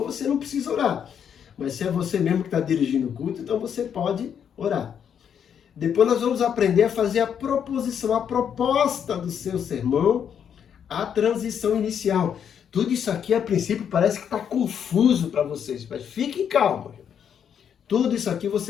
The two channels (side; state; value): right; quieter; 8.2 dB